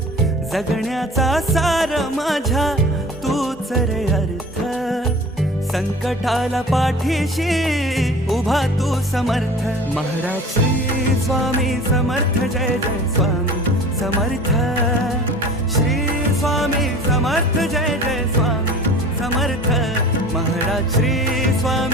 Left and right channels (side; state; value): both; normal; correlation 0.41